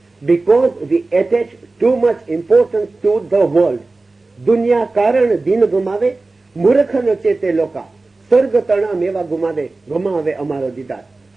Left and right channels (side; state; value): left; quieter; 3.4 dB